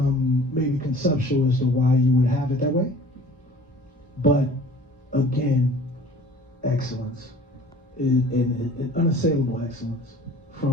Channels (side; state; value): both; normal; correlation 0.47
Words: maybe conceptual as to why you would have it that way. But again, excellence, an unassailable excellence